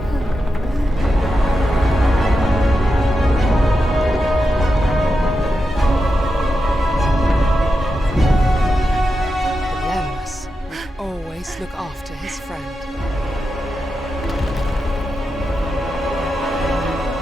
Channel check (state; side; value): normal; both; correlation 0.88